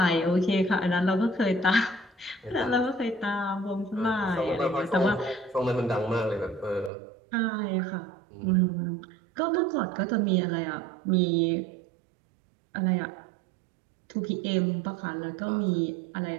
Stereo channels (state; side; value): drops out; left; at 6.9 s